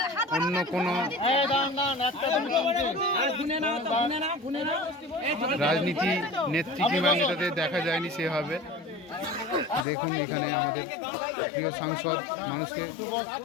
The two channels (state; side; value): drops out; right; at 9.9 s